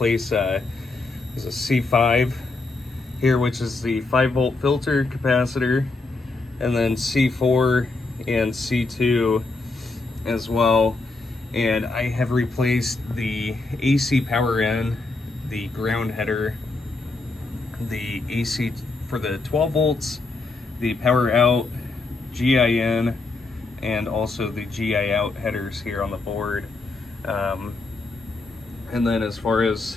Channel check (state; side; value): quieter; right; 3.5 dB